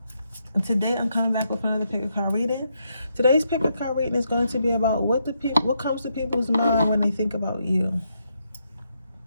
And today I'm coming back with another pick a card reading. Today's pick a card reading is going to be about what comes to people's mind when they think about you.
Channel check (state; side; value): inverted; both; correlation -0.79